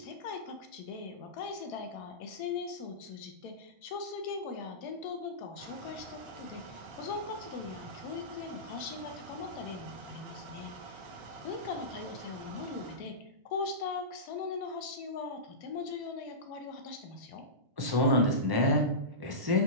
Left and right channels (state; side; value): late; left; 1.1 ms